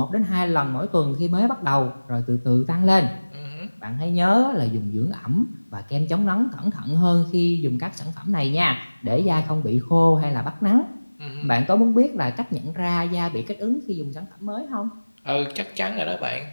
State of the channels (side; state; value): both; inverted; correlation -1.00